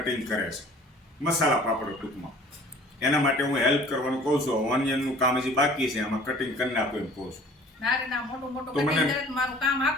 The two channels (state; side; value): normal; both; correlation 0.49